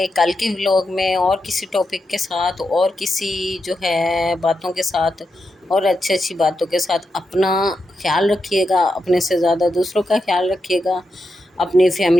کل کے ولاگ میں اور کسی ٹاپک کے ساتھ اور کسی جو ہے باتوں کے ساتھ اور اچھی باتوں کے ساتھ. اپنا خیال رکھیے گا, اپنے سے زیادہ دوسروں کا خیال رکھیے گا, اپنے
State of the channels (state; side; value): normal; both; correlation 0.86